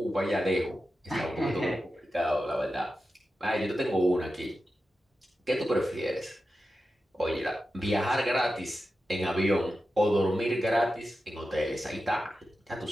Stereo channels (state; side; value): normal; both; correlation 0.91